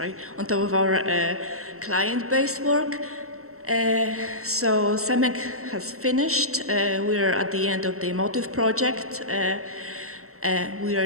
on top of our client-based work. So CEMEC has finished. We're at the end of the Emotive project. We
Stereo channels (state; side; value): late; left; 0.64 ms